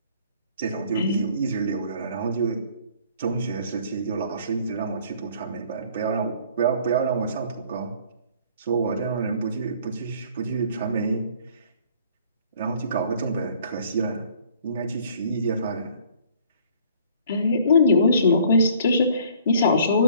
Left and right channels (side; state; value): both; inverted; correlation -0.56